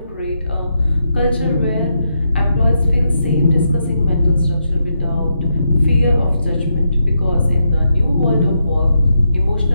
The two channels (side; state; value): both; inverted; correlation -0.82